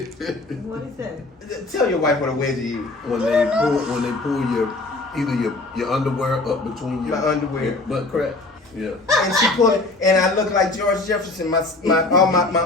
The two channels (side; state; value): right; quieter; 3.2 dB